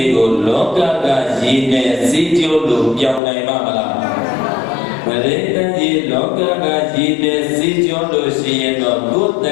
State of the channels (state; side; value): drops out; right; at 3.2 s